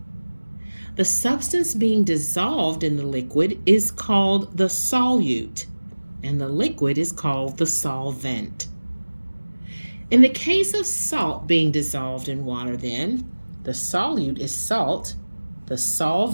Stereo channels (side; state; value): both; inverted; correlation -1.00